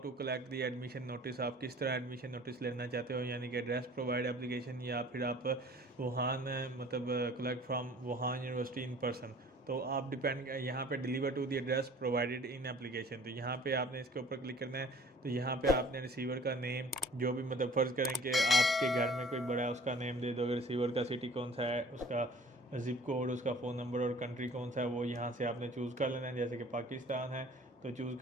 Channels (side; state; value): both; normal; correlation 0.49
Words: collect the admission notice, आप किस तरह एडमिशन नोटिस लेना चाहते हो, यानी कि एड्रेस प्रोवाइड एप्लीकेशन, या फिर आप वुहान मतलब collect from Wuhan university in person. तो आप डिपेंड यहाँ पे deliver to the address provided in application, तो यहाँ पे आपने इसके ऊपर क्लिक करना है। तो यहाँ पे आपने रिसीवर का नेम, जो भी मतलब फ़र्ज़ करें कि आपके घर में कोई बड़ा है उसका नेम दे दो। अगर रिसीवर का सिटी कौन सा है, उसका ज़िप कोड, उसका फ़ोन नंबर और कंट्री कौन सा है वो यहाँ से आपने चूज़ कर लेना है। जैसे कि पाकिस्तान है तो चूज़